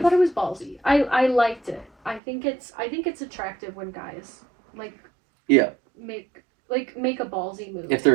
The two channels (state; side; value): drops out; left; at 2.2 s